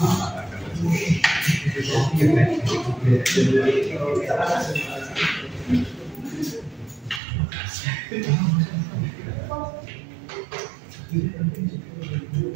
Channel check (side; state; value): left; drops out; at 7.2 s